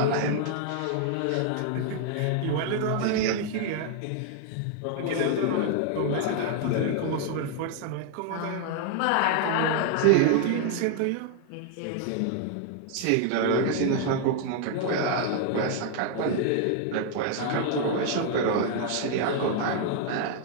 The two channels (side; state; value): both; different; correlation 0.00